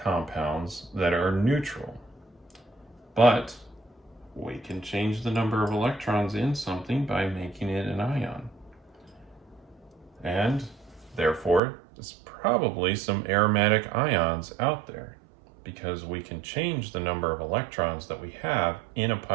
compounds that are neutral, but we can change the number of electrons in something by making it an ion. And therefore, there's probably some aromatic ions out there because we can change the number of electrons that we have in a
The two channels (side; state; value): left; drops out; at 11.6 s